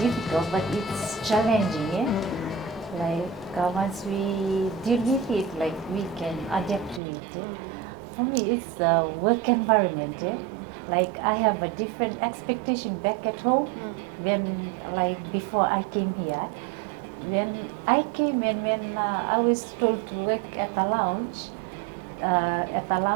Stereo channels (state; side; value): drops out; left; at 7.0 s